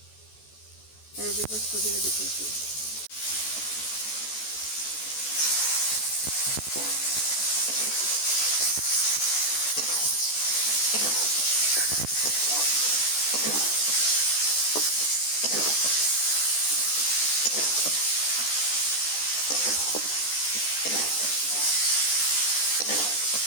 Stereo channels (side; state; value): right; late; 14 ms